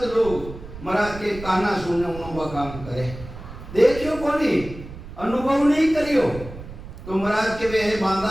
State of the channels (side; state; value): right; noise; rumble, 13 dB below the sound